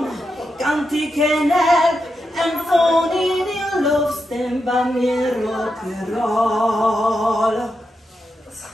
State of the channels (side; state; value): both; normal; correlation 0.86